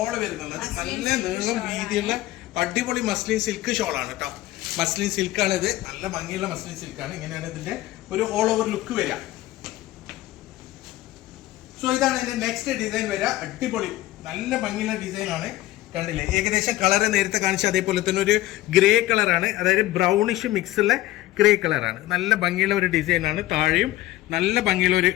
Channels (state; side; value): quieter; right; 16.3 dB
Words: വരുന്നത്. നല്ല നീളം വീതിയുള്ള അടിപൊളി മസ്ലിൻ സിൽക്ക് ഷോളാണ് കേട്ടോ. മസ്ലിൻ സിൽക്കാണ് ഇത്, നല്ല ഭംഗിയുള്ള മസ്ലിൻ സിൽക്കാണ്. ഇങ്ങനെയാണ് ഇതിന്റെ ഒരു ഓൾ ഓവർ ലുക്ക് വരിക. സോ ഇതാണ് ഇതിന്റെ നെക്സ്റ്റ് ഡിസൈൻ വരിക. അടിപൊളി നല്ല ഭംഗിയുള്ള ഡിസൈൻ ആണ്. കണ്ടില്ലേ, ഏകദേശം കളറ് നേരത്തെ കാണിച്ച അതേപോലെ തന്നെ ഒരു ഗ്രേ കളറാണ്, അതായത് ബ്രൗണിഷ് മിക്സുള്ള ഗ്രേ കളറാണ്. നല്ല ഭംഗിയുള്ള ഒരു ഡിസൈനാണ്. താഴെയും നല്ല ഭംഗിയുള്ള ഒരു